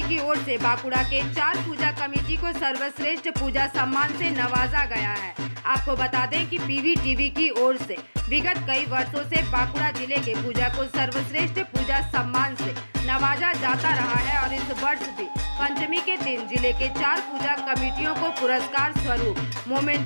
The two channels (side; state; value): both; inverted; correlation -1.00